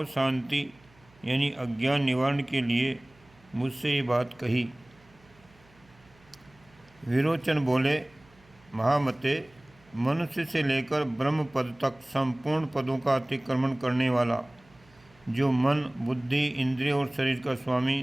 शांति यानी अज्ञान निवारण के लिए मुझसे ये बात कही। विरोचन बोले, महामते, मनुष्य से लेकर ब्रह्म पद तक संपूर्ण पदों का अतिक्रमण करने वाला जो मन, बुद्धि, इंद्रिय और शरीर का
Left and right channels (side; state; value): right; noise; hum, 29 dB below the sound